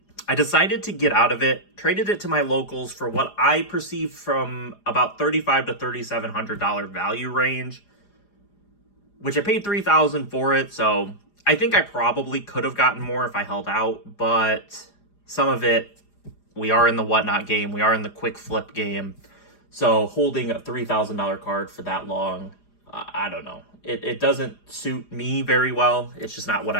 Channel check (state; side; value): late; right; 4.9 ms